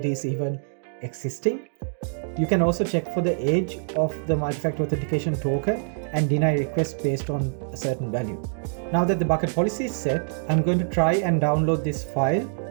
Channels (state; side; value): silent; left; digital silence